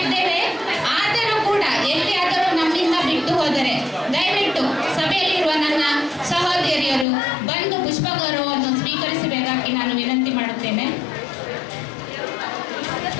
ಇದ್ದೇವೆ, ಆದರೂ ಕೂಡ ಎಲ್ಲಿಯಾದರೂ ನಮ್ಮಿಂದ ಬಿಟ್ಟು ಹೋದರೆ ದಯವಿಟ್ಟು ಸಭೆಯಲ್ಲಿರುವ ನನ್ನ ಸಹೋದರಿಯರು ಬಂದು ಪುಷ್ಪ ಗೌರವವನ್ನು ಸ್ವೀಕರಿಸಬೇಕಾಗಿ ನಾನು ವಿನಂತಿ ಮಾಡುತ್ತೇನೆ.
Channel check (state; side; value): drops out; right; at 7.1 s